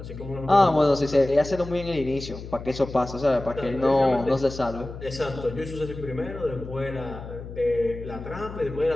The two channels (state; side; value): noise; left; hum, 12 dB below the sound